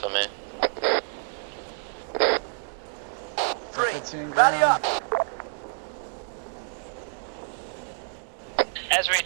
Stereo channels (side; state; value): left; silent; digital silence